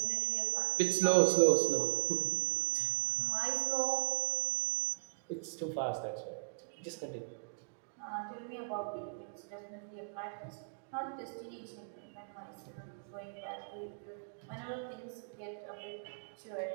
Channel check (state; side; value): silent; left; digital silence